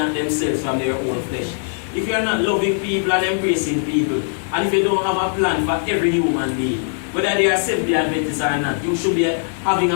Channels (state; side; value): silent; right; digital silence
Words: themselves from their own flesh. If you are not loving people and embracing people, and if you don't have a plan for every human being, whether they are Seventh-day Adventists or not, you should be having